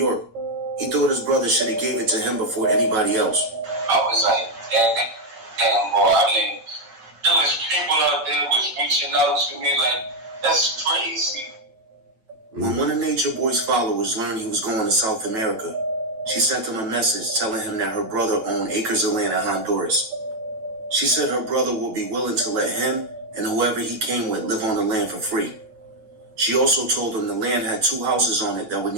he thought his brother should have gave it to him before anybody else. I was like, damn, boy, I mean, there was people out there was reaching out to me like, that's crazy. When one of Natureboy's followers learned he was going to South America, she sent him a message telling him that her brother owned acres of land in Honduras. She said her brother would be willing to let him and whoever he came with live on the land for free. She also told him the land had 2 houses on it that would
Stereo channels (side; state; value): left; late; 8.8 ms